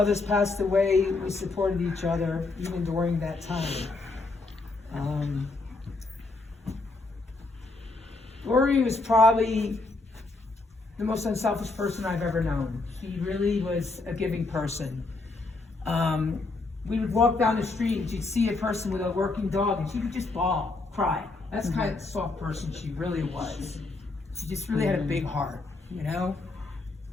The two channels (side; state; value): right; quieter; 3.5 dB